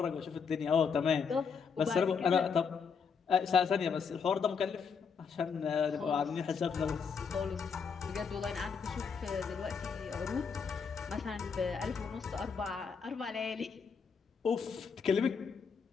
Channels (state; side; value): quieter; right; 6.0 dB